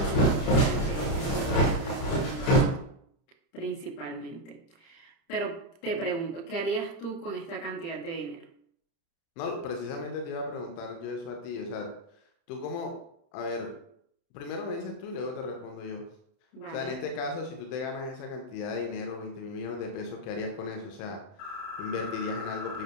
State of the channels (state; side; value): late; right; 30 ms